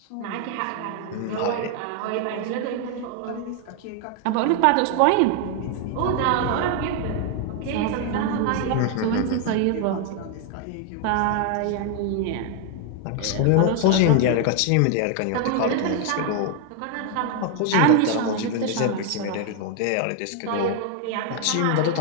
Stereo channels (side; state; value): both; different; correlation 0.00